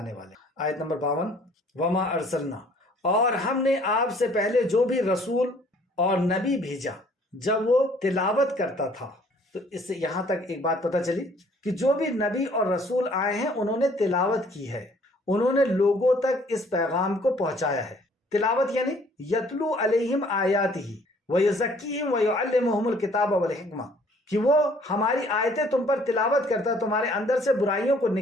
والے. آیت نمبر 52. وما ارسلنا, اور ہم نے آپ سے پہلے جو بھی رسول اور نبی بھیجا جب وہ تلاوت کرتا تھا. تو اس سے یہاں تک ایک بات پتہ چلی کہ جو بھی نبی اور رسول آئے ہیں انہوں نے تلاوت کی ہے, انہوں نے لوگوں تک اس پیغام کو پہنچایا ہے. تلاوت یعنی یتلو علیہم آیاتہ ویزکیہم ویعلمہم الکتاب والحکمہ, کہ وہ ہماری آیتیں تم پر تلاوت کرتا ہے, تمہارے اندر سے برائیوں کو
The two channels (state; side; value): normal; both; correlation 0.58